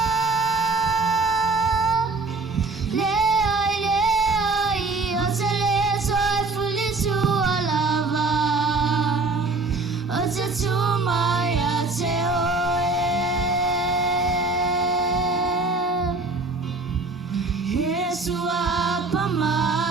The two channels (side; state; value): left; quieter; 3.6 dB